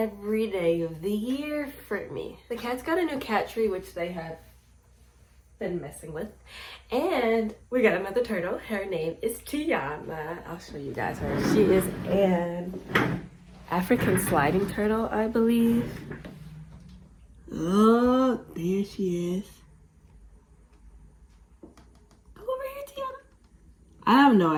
day of the year for me. The cats got a new cat tree, which they have been messing with, and we got another turtle. Her name is Tiana. I'll show you guys her. She is an African sliding turtle, I believe. Oh, there she is. Go over here, Tiana. I have no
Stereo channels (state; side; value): identical; both; correlation 1.00